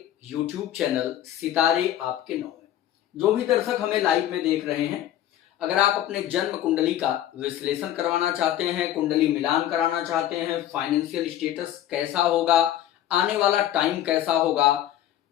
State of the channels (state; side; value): quieter; right; 12.2 dB